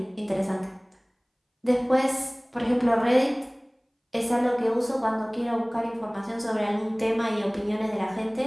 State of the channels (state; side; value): identical; both; correlation 1.00